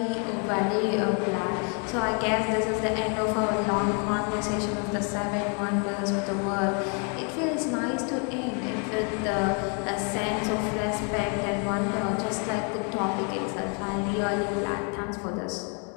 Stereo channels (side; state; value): right; quieter; 38.3 dB